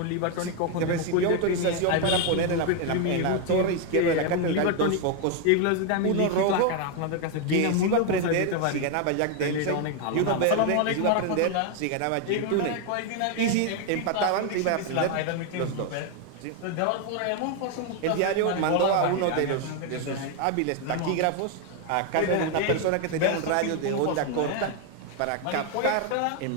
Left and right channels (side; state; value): both; different; correlation 0.01